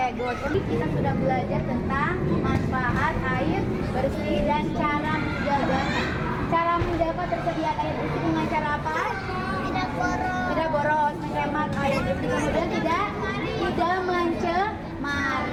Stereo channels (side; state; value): both; identical; correlation 1.00